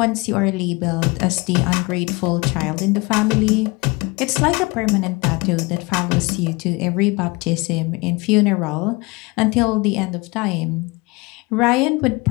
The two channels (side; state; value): right; quieter; 25.5 dB